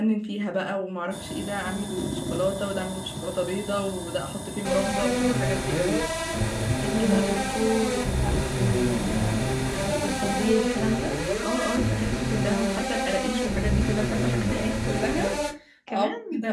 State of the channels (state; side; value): identical; both; correlation 1.00